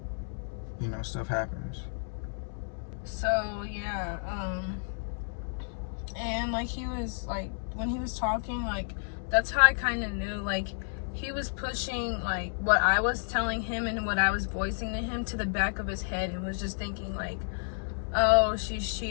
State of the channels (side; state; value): right; silent; digital silence